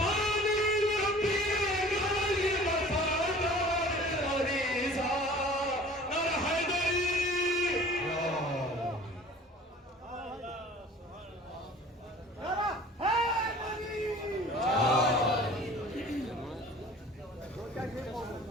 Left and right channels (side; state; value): both; normal; correlation 0.46